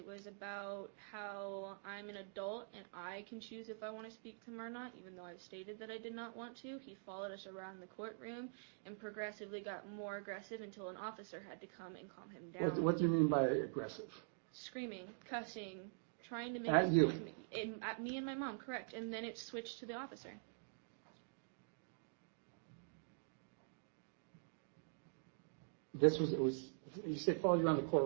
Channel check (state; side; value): silent; left; digital silence